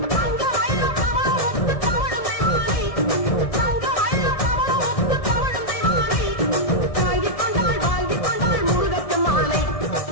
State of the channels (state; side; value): late; right; 1.6 ms